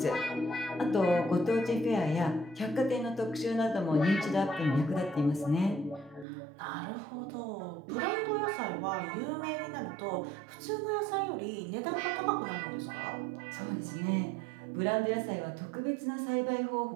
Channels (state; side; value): drops out; left; at 6.2 s